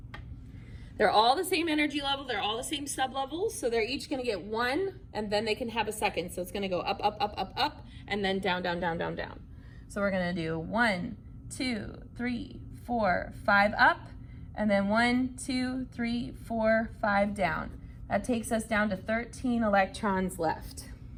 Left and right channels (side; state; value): both; identical; correlation 1.00